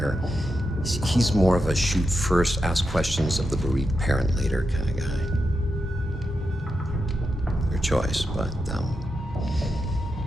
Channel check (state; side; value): normal; both; correlation 0.87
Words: he's more of a shoot first, ask questions of the bereaved parent later kind of guy. Your choice, but,